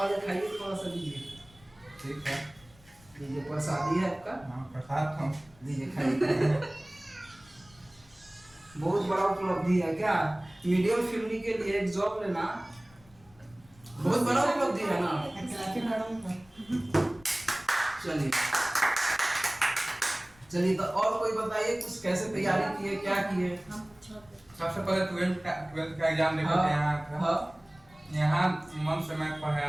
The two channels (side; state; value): left; noise; rumble, 27 dB below the sound